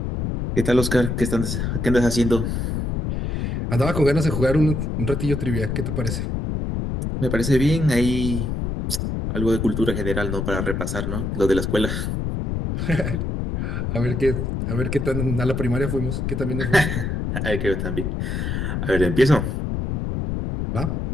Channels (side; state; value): left; noise; rumble, 2 dB below the sound